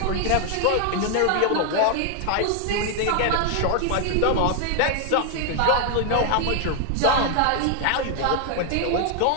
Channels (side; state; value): both; different; correlation 0.00